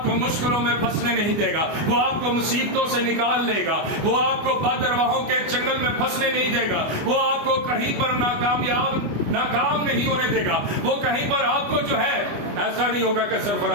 کو مشکلوں میں پھنسنے نہیں دے گا، وہ آپ کو مصیبتوں سے نکال لے گا، وہ آپ کو بدرواہوں کے چنگل میں پھنسنے نہیں دے گا، وہ آپ کو کہیں پر ناکام نہیں ہونے دے گا، وہ کہیں پر آپ کو جو ہے ایسا نہیں ہوگا کہ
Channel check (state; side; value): late; left; 25 ms